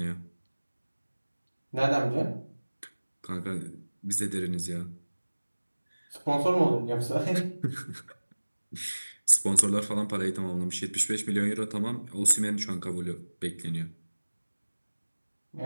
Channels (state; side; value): inverted; both; correlation -1.00